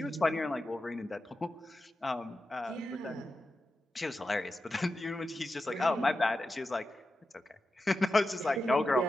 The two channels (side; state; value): both; normal; correlation 0.91